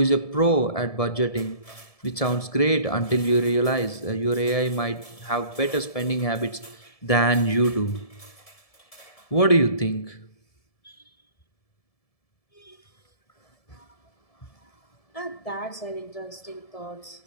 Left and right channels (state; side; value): late; right; 1.7 ms